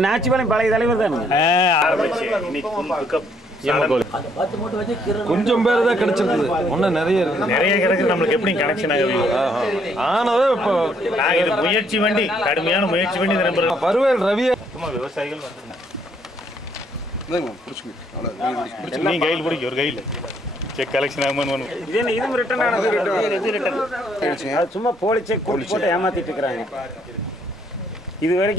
நாச்சிபாளையம் பழைய தலைவர் தான் கொஞ்சம் பேர் தான் கிடைச்சிருக்குது. ஒன்னும் நிறைய இருக்கு. நிறைய கிடைக்குது. நம்மளுக்கு எப்படி கனெக்ஷன் ஆகுது ஆனவே இப்போ நாங்கள் இது முயற்சி பண்ணி கடுமையான முயற்சி பண்ணி நம்புறோம். பருவேல் ரவியை விவசாயிகள் நீ கையில் பிடிக்க ஒரு கையில் செக் கலெக்ஷன் ஆகுமான்னு இதுவும் ரிட்டர்ன் ஆனது. சும்மா போலி செக் போட்டு ஏமாத்திட்டு இருக்கிறாங்க. இது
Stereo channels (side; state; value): both; normal; correlation 0.68